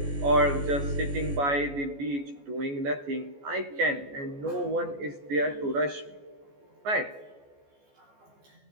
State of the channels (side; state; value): left; late; 14 ms